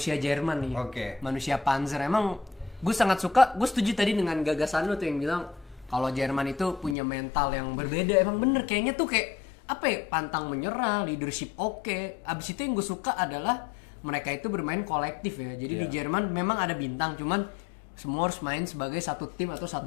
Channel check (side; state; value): right; drops out; at 7.0 s